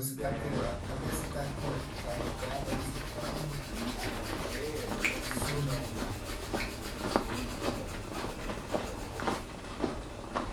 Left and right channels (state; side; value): identical; both; correlation 1.00